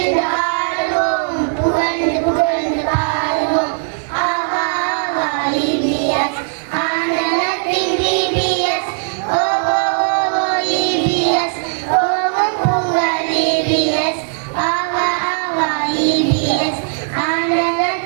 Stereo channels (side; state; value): left; silent; digital silence